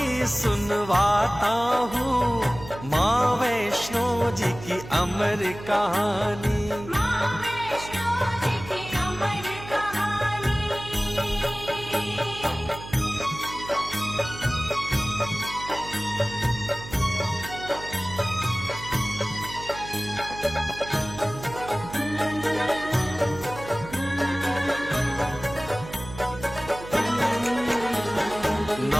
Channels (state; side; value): noise; right; hum, 13 dB below the sound